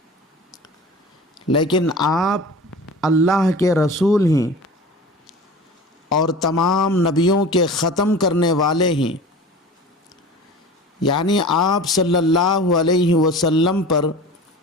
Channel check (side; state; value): both; normal; correlation 0.37